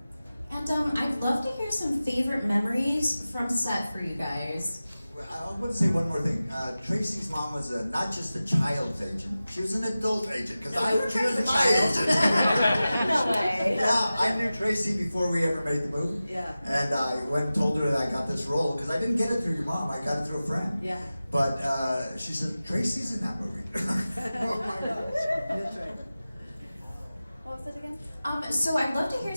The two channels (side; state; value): both; inverted; correlation -0.95